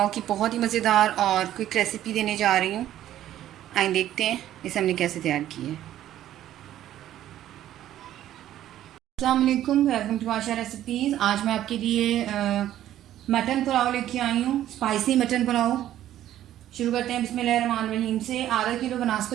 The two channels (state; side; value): quieter; left; 12.5 dB